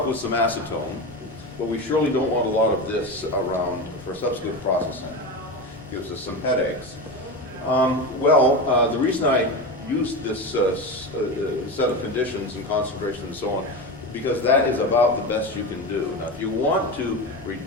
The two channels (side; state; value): both; normal; correlation 0.21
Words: with some acetone, but we surely don't want a lot of this around for subsequent processing. Gives us some headaches. The reason I used this set of conditions and concentration and so on, because that is about the best you can do. Now, if you want to